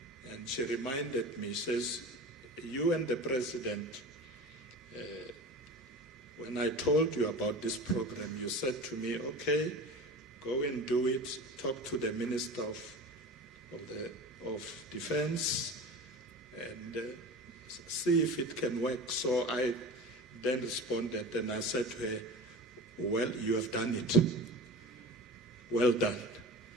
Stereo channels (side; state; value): both; normal; correlation 0.34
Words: And she reminded me, says, you and the President, when I told you about this program, you said to me, okay, go and do it, talk to the Minister of Defense, and see if it can work. So I then responded and I said to her, well, you have done it. Well done.